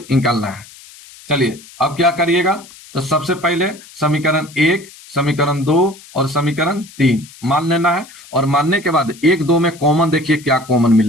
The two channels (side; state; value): left; noise; hiss, 21 dB below the sound